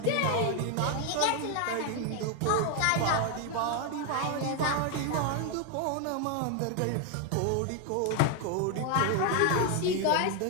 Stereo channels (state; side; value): different; both; correlation 0.01